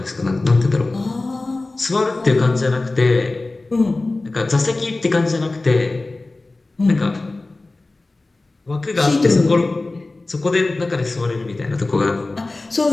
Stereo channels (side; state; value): right; quieter; 3.2 dB